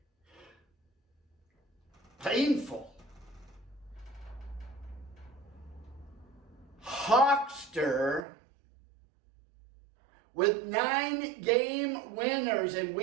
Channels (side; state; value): left; drops out; at 8.2 s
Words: painful. Hawkster, with 9 game winners in